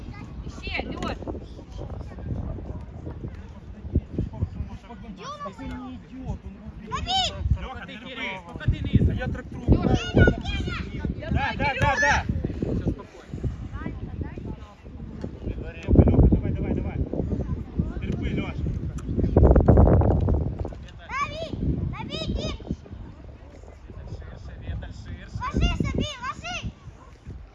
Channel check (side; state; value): both; identical; correlation 1.00